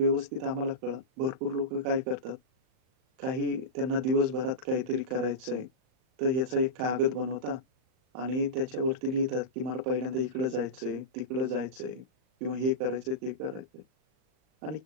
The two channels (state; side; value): late; left; 39 ms